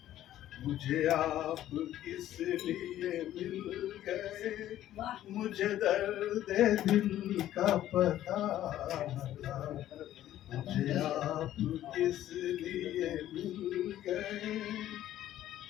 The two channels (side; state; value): right; quieter; 12.8 dB